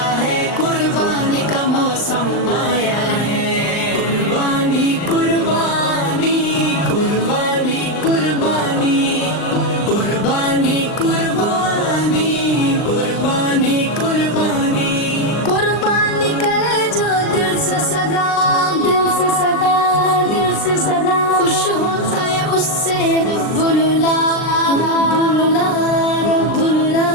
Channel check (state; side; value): late; right; 39 ms